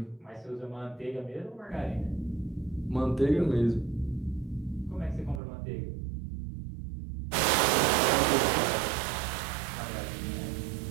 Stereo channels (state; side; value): drops out; left; at 5.4 s